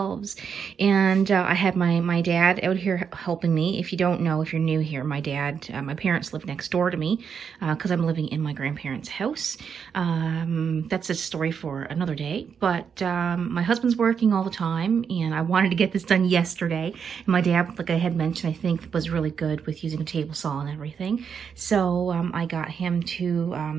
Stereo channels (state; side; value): quieter; left; 6.9 dB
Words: and I had my dad out here helping me. If you don't know, if you're new here, my parents live next door to me because I'm living in my grandparents' house. That's a story for another day. But my husband's working all the time, and I wanted to get this done yesterday. And my dad, like I had mentioned, I think was really good with using a table saw and everything. So I got him